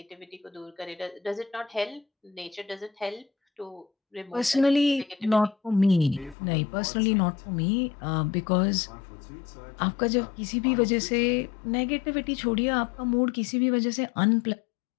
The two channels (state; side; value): drops out; right; at 6.4 s